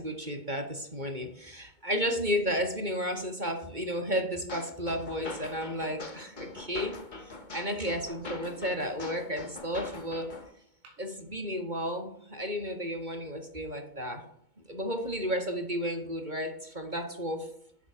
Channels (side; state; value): left; late; 2.2 ms